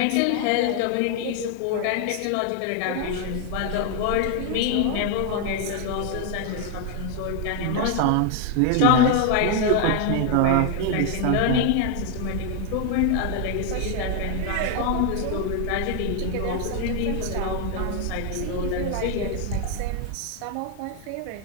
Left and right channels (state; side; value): different; both; correlation 0.01